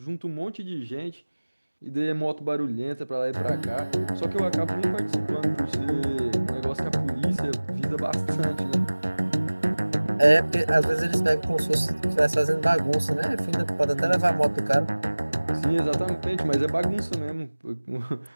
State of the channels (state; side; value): inverted; both; correlation -1.00